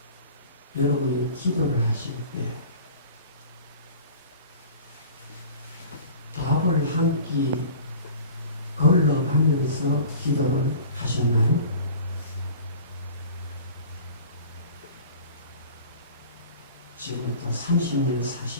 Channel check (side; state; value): both; inverted; correlation -0.42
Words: 여러분이 기도를 하실 때 밥을 한 끼 걸러가면서 기도를 하셨나요? 지금부터 30년,